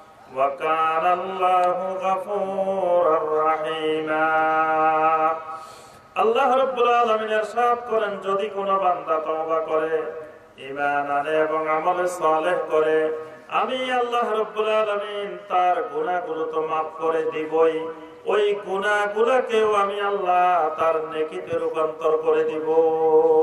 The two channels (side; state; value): both; identical; correlation 1.00